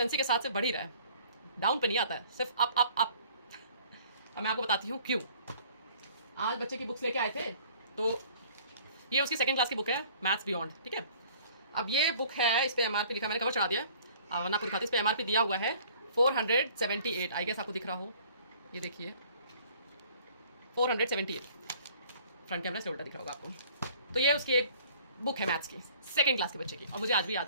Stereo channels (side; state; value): both; inverted; correlation -0.54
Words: के साथ से बढ़ ही रहा है, डाउन पे नहीं आता है, सिर्फ अप अप अप। और मैं आपको बताती हूँ क्यों। आज बच्चे की बुक्स लेके आए थे, तो ये उसकी सेकंड क्लास की बुक है, मैथ्स बियॉन्ड, ठीक है। अब ये बुक है, इस पे एमआरपी लिखा, मैंने कवर चढ़ा दिया, वरना आपको दिखाती। इस पे एमआरपी दिया हुआ है 478, आई गेस आपको दिख रहा हो, ये देखिए 478, फ्रंट कैमरा से उल्टा दिख रहा होगा आपको। तो ये उसकी एक बुक है मैथ्स की, सेकंड क्लास के बच्चे की। और मुझे आज भी याद